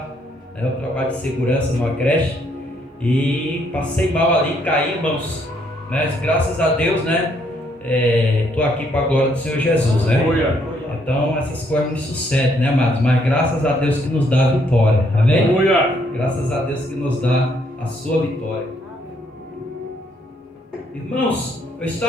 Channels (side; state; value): both; normal; correlation 0.70